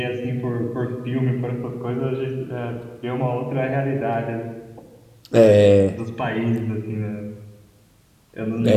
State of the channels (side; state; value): both; identical; correlation 1.00